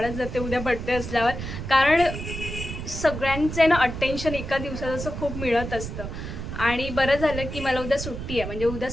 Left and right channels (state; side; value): noise; right; rumble, 7 dB below the sound